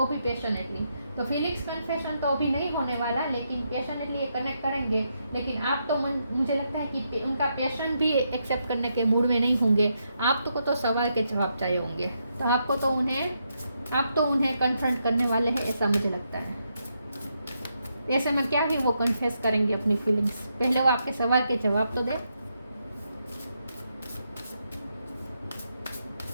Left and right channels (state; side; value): inverted; both; correlation -0.81